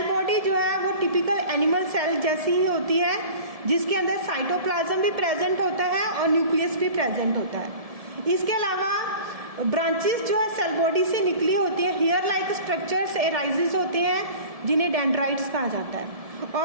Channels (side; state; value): left; late; 1.7 ms